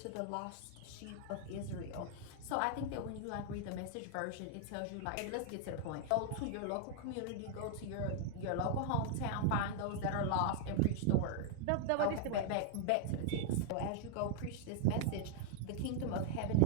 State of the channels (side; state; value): both; different; correlation 0.00